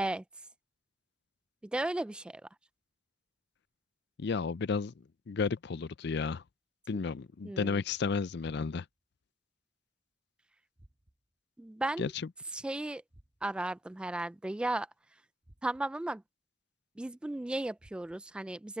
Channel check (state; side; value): normal; both; correlation 0.58